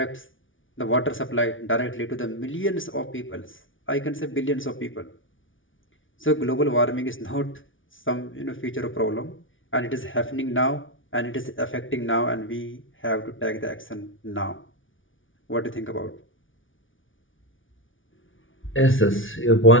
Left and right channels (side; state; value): right; late; 0.57 ms